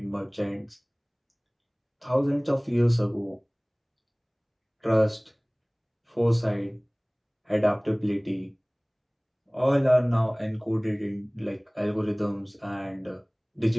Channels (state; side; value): identical; both; correlation 1.00